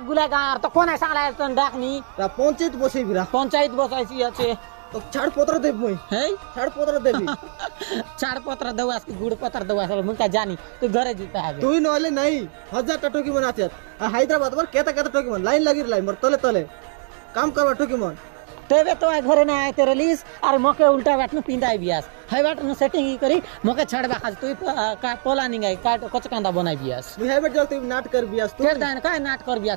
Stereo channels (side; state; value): left; silent; 64 dB below the other